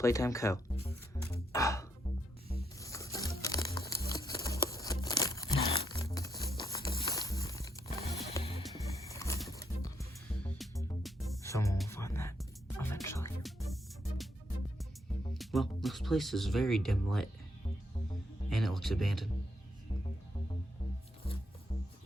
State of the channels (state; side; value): normal; both; correlation 0.76